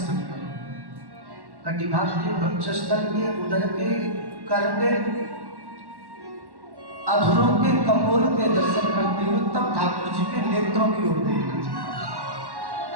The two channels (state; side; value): late; left; 1.1 ms